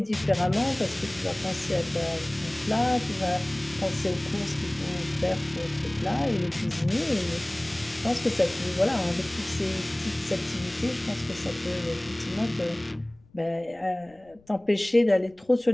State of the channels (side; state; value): left; noise; rumble, 29 dB below the sound